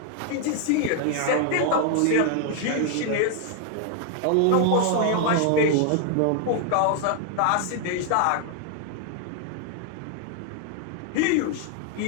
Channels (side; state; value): both; different; correlation 0.00